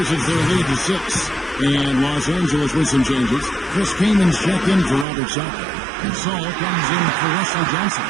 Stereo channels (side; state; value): left; drops out; at 5.1 s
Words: their lead to 6. And Los Angeles with some changes. Chris Kaman's checked in for Robert Sacco. And Saul comes in for Wesley Johnson.